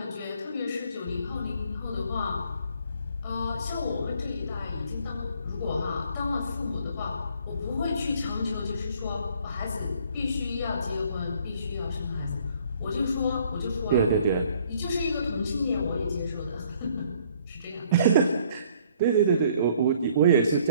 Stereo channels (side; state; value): both; inverted; correlation -0.61